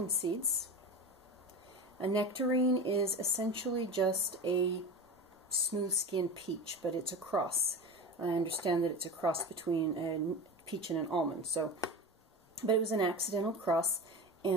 seeds. A nectarine is essentially just a smooth-skinned peach, but it's a cross. I understand that it's a cross between a peach and an almond, but it was an accidental cross,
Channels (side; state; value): both; normal; correlation 0.28